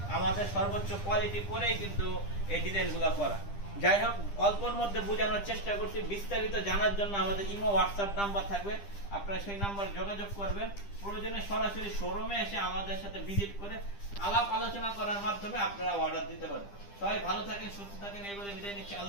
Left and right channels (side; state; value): right; late; 10 ms